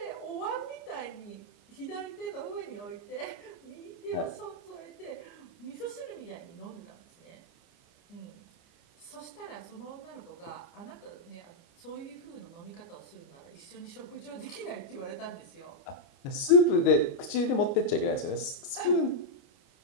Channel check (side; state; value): right; late; 29 ms